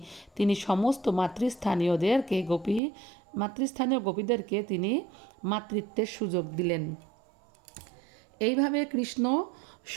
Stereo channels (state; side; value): drops out; left; at 2.8 s